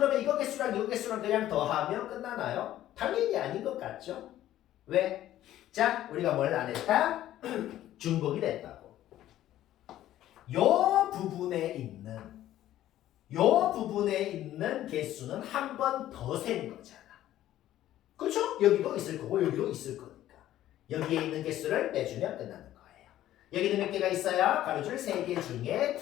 이거 개수랑 이거 개수랑 그냥 더하면 끝나나요? 당연히 아닌 것 같죠? 왜? 자, 우리가 뭘 안 했다? 중복이 됐다고. 요 부분에 있는 개수는 한 번 더 센 거잖아. 그렇죠? 여기도 있을 거고 여기도 있을 거니까. 여기에 있는 개수를 빼주면 끝나는 거예요. 여기는 몇 개가 있어요? 가로줄 3개 중에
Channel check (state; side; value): quieter; right; 13.2 dB